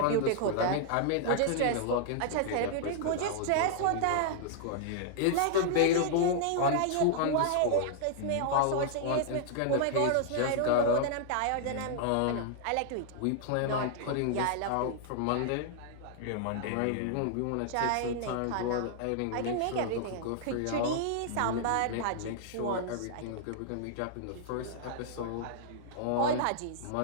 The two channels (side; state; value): both; different; correlation -0.01